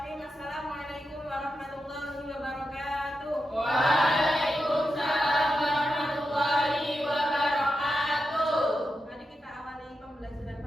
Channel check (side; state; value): both; normal; correlation 0.88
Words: Assalamualaikum warahmatullahi wabarakatuh. Waalaikumsalam warahmatullahi wabarakatuh. Mari kita awali pembelajaran